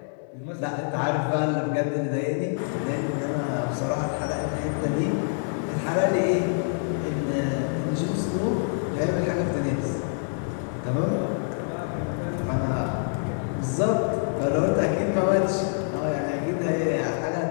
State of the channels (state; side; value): silent; right; digital silence